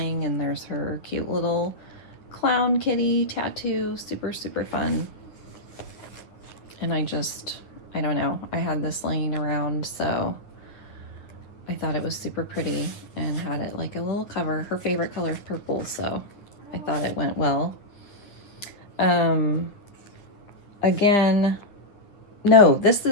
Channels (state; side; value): late; right; 10 ms